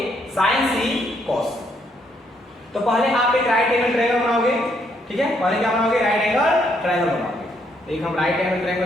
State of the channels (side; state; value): both; normal; correlation 0.72